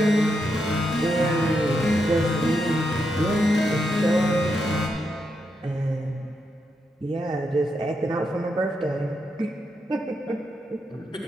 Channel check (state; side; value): normal; both; correlation 0.82